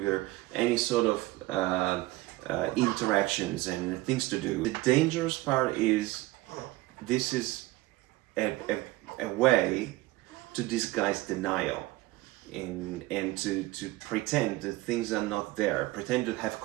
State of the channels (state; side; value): quieter; left; 19.2 dB